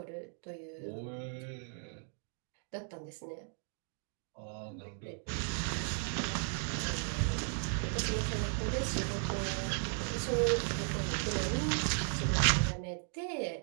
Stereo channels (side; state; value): left; silent; 54 dB below the other